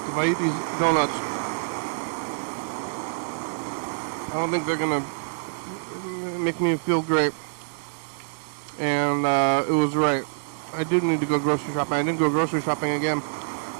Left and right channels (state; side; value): silent; left; digital silence